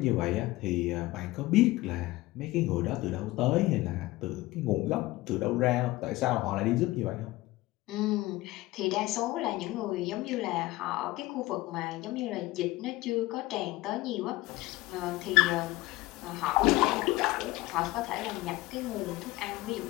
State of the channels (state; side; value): quieter; right; 18.9 dB